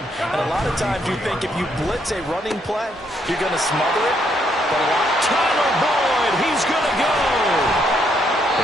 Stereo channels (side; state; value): both; normal; correlation 0.73